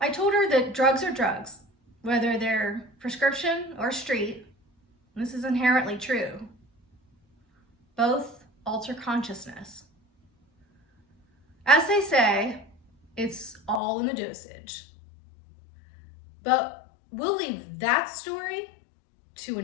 I told her that drugs are drugs, whether they're prescription or street. This is inherently true. Both alter consciousness. As they say, it's all in the dosage. But we'll leave that story to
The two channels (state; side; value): drops out; right; at 13.8 s